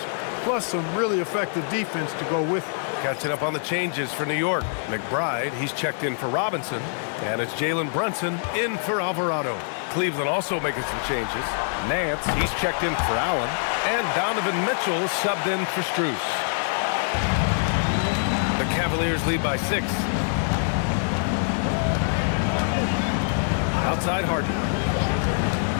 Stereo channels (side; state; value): right; silent; 60 dB below the other